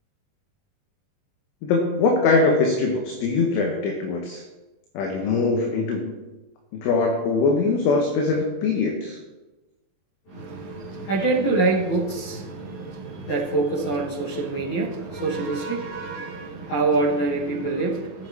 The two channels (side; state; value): right; late; 21 ms